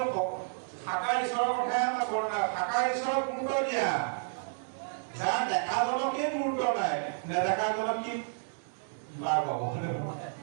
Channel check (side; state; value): left; silent; digital silence